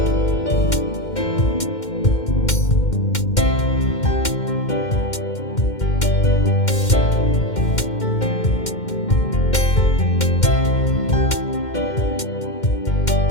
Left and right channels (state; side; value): late; right; 2.1 ms